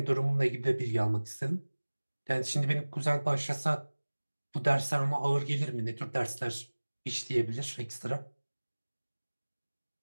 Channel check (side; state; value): both; inverted; correlation -1.00